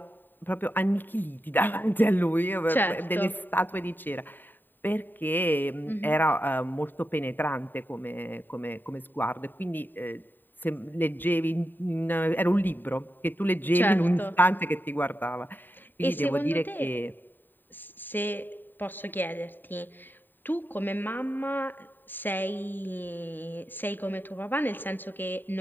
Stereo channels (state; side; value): late; right; 0.092 ms